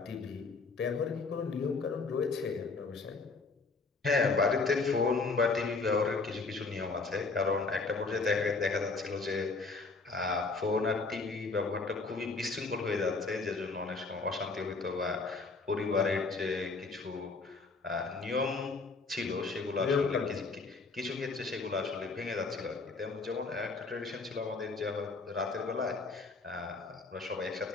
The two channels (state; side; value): quieter; right; 4.1 dB